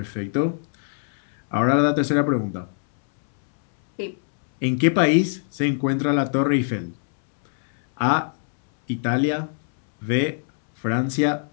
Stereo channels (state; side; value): silent; right; 64 dB below the other